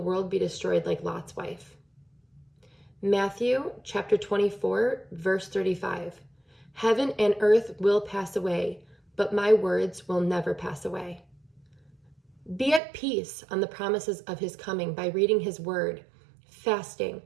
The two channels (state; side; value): drops out; left; at 12.8 s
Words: be destroyed like Lot's wife. Matthew chapter 24, verse 35. Heaven and earth will pass away, but my words will never pass away. Be at peace on the promises of his coming by reading his word, fasting,